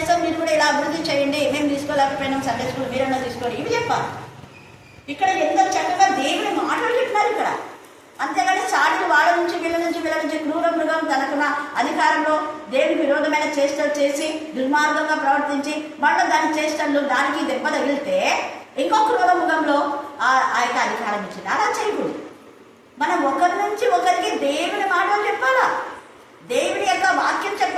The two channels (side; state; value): both; identical; correlation 1.00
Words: మీరు కూడా ఇలా అభివృద్ధి చేయండి, మేము తీసుకోలేకపోయినాం సండే స్కూల్, మీరన్నా తీసుకోండి, ఇవి చెప్పాలి. ఇక్కడ ఎంత చక్కగా దేవుని మాటలు చెప్పినారు ఇక్కడ. అంతేగాని సాటిలు వాళ్ళ నుంచి వీళ్ళ నుంచి క్రూర మృగం తనకున్న అధికారంలో దేవుని విరోధమైన చేష్టలు చేసి దుర్మార్గంగా ప్రవర్తించి మళ్ళీ దాని చేష్టలు దానికి దెబ్బ తగిలితే ఇంకో క్రూర మృగంలో ఆ యొక్క అధికారం ఇచ్చింది. అలా చేయకూడదు. మనం ఒకరి నుంచి ఒకరికి దేవుని మాటలు చెప్పాలా, దేవుని యొక్క వాక్యం